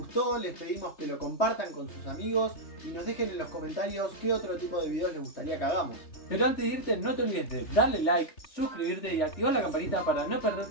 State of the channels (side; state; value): right; late; 3.4 ms